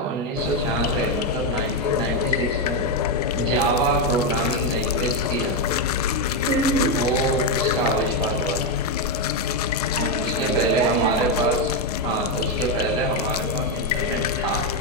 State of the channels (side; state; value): both; normal; correlation 0.05